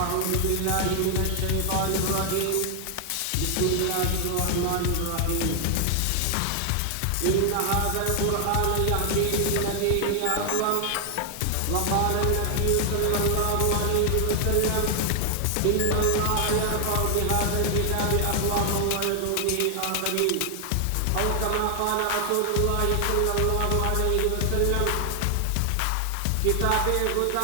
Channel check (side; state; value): both; different; correlation 0.00